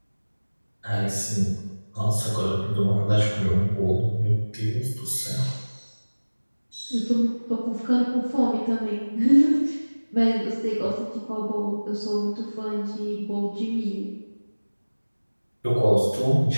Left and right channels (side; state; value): both; inverted; correlation -1.00